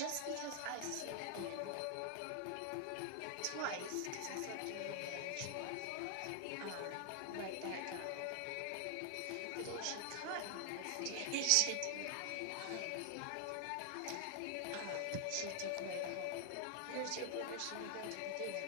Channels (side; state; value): both; different; correlation 0.00